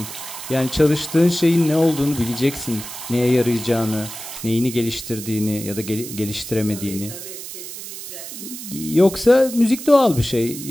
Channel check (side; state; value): right; noise; hiss, 11 dB below the sound